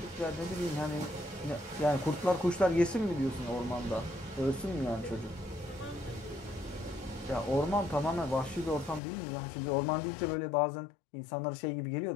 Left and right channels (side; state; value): right; drops out; at 9.0 s